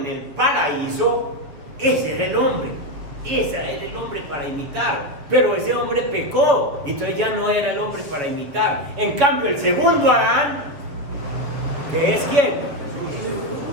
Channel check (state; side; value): late; left; 7.4 ms